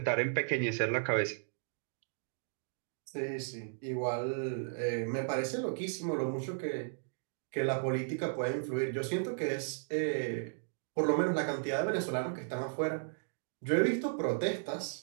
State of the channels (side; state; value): left; silent; digital silence